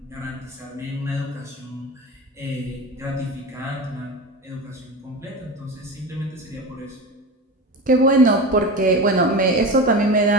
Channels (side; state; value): both; normal; correlation 0.27